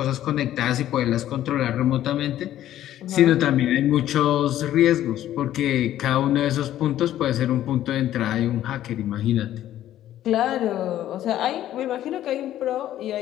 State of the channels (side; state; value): right; quieter; 12.6 dB